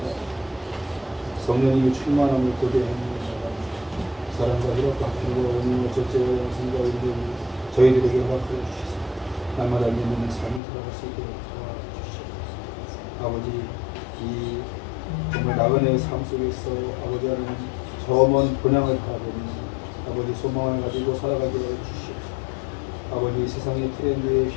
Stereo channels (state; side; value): drops out; right; at 10.6 s